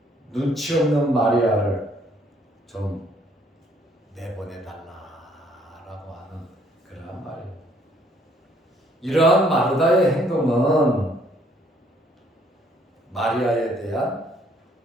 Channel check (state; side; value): normal; both; correlation 0.65